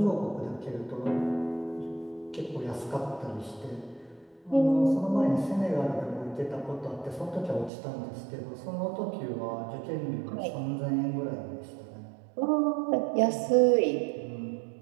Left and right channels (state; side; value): drops out; left; at 7.7 s